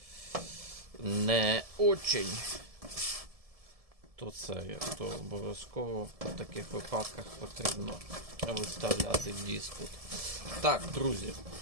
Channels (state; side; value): late; left; 1.7 ms